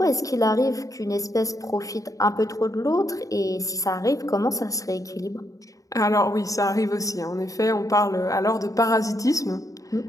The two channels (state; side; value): late; right; 0.16 ms